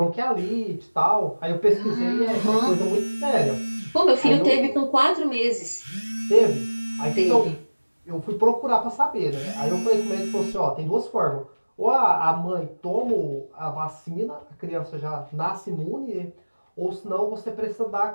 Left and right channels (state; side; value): inverted; both; correlation -1.00